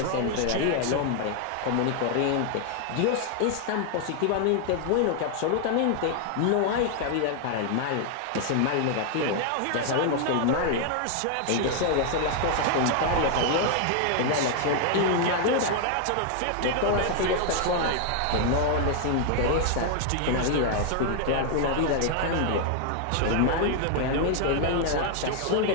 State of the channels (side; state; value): both; different; correlation 0.00